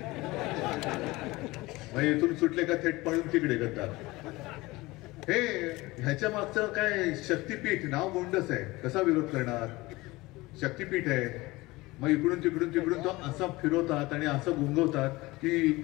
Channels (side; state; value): right; quieter; 20.9 dB